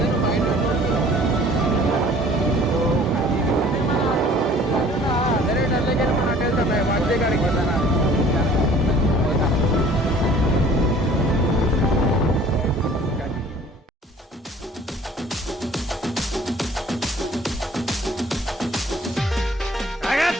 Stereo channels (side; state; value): both; normal; correlation 0.52